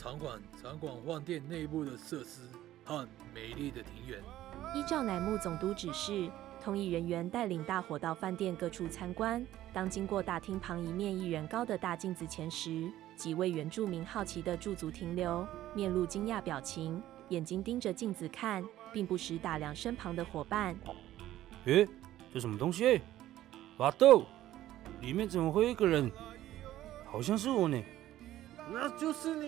观饭店内部的设施和美丽的庭园。依照乃木总督指示，通译人员带领大伙到饭店各处参观。当经过大厅旁一面1人高的大镜子前时，几位原住民好奇地驻足停留，面露惊讶表情，眼睛盯着镜子看，并不时打量身旁的伙伴。这什么东西？巴豆，里面怎么会有一个人？好像是我呢。那就是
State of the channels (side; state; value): left; quieter; 13.9 dB